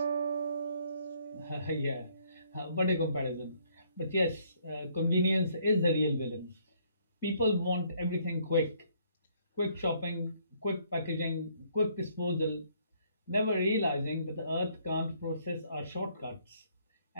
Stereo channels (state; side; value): inverted; both; correlation -0.66